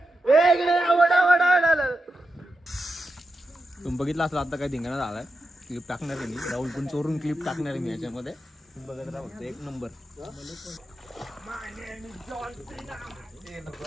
तुम्ही बघितलं असलं आता काय धिंगाणा झालाय. क्लिप टाकणार आहे मी. राहुल पण चोरून क्लिप टाकणार आहे मी याच्यामध्ये. बघत राहा फक्त. एक नंबर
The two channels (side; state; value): both; normal; correlation 0.88